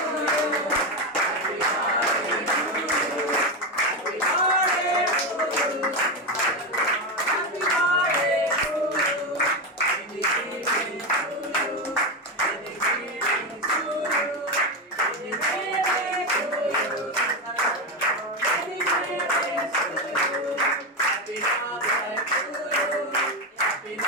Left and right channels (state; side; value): normal; both; correlation 0.12